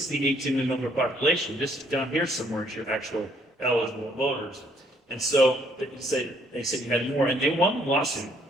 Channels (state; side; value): normal; both; correlation 0.66